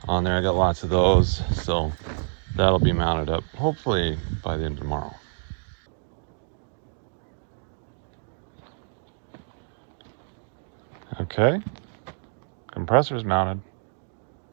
on there. I got lots of those, so that'll be mounted up hopefully by the end of tomorrow. Okay, compressor's mounted.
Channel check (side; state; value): left; silent; digital silence